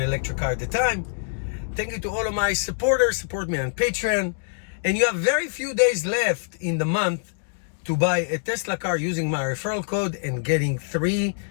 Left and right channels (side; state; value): right; silent; digital silence